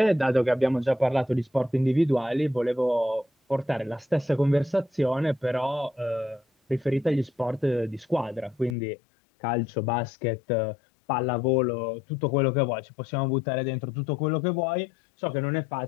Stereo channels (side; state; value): right; drops out; at 8.8 s